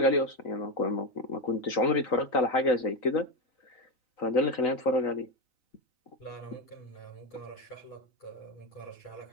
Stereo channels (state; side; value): late; right; 3.9 ms